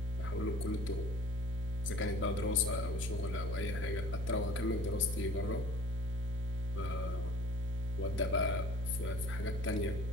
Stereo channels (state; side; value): normal; both; correlation 0.49